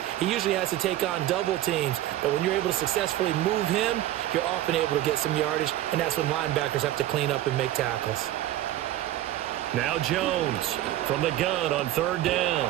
he usually has to take on double teams. But when you're able to successfully move him, you're often able to get some yardage, and that's when linebackers have to clean up and make tackles. Now Jones from the gun on 3rd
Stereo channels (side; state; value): left; quieter; 13.9 dB